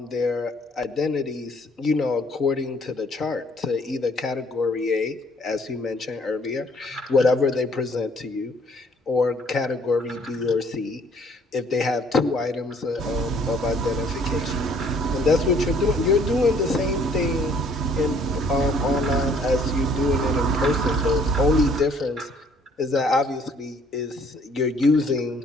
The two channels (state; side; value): normal; both; correlation 0.60